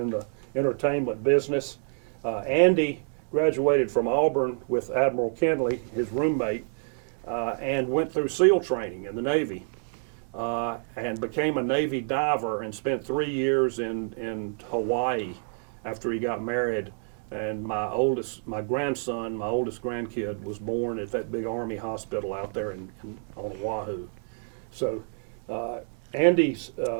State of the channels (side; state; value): left; silent; 59 dB below the other